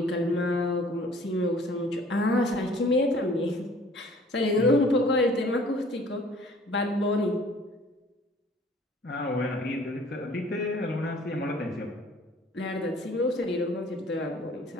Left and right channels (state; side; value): normal; both; correlation 0.53